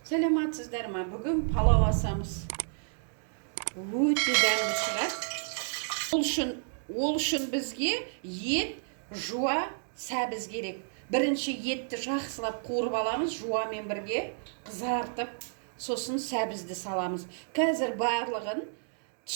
Саламатсыздар ма? Бүгін палау асамыз. Өте дәмді шығар. Ол үшін бізге ет, жуа, сәбіз керек. Бірінші етті жақсылап қуырып аламыз, жуамен бірге қызартып, сосын сәбізді саламыз. Қазір барлығын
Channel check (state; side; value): silent; left; digital silence